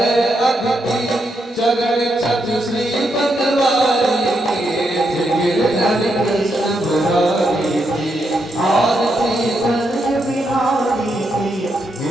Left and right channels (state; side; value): normal; both; correlation 0.81